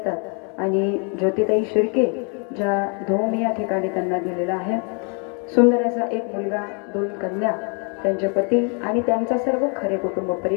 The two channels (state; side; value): quieter; right; 37.3 dB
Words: आणि ज्योतिताई शिर्के ज्या धोम या ठिकाणी त्यांना दिलेला आहे. सुंदर असा एक मुलगा, 2 कन्या, त्यांचे पती आणि त्यांचा सर्व खरे कुटुंब